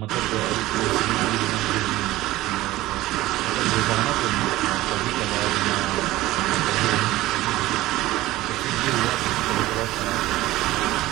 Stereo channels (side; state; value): left; quieter; 17.1 dB